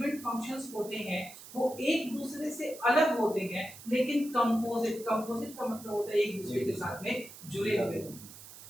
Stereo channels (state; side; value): noise; right; hiss, 16 dB below the sound